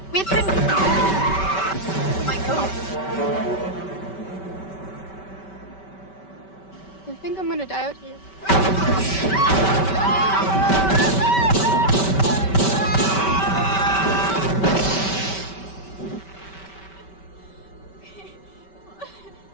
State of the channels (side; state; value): right; late; 5.2 ms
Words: We've been... Oh my God. I think I'm gonna die out here.